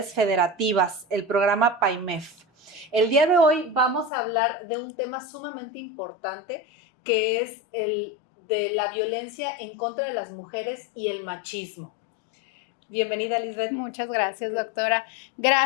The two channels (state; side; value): drops out; right; at 4.1 s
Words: federativas, el programa PAIMEF. El día de hoy vamos a hablar de un tema sumamente importante que es el de la violencia en contra de las mujeres y el machismo. Bienvenida, Lisbeth. Muchas gracias, doctora.